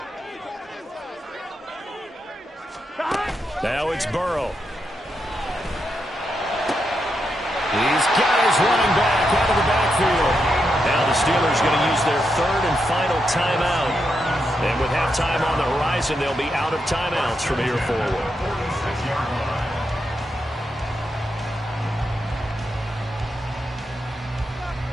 Now it's Burrow. He's got his running back out of the backfield. Now the Steelers going to use their 3rd and final timeout. And with halftime on the horizon, they'll be out of timeouts from here forward.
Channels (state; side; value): normal; both; correlation 0.84